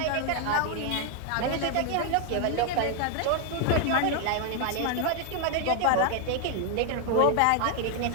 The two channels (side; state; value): both; different; correlation 0.00